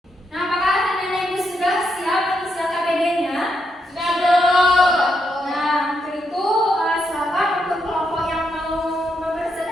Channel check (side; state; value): both; normal; correlation 0.80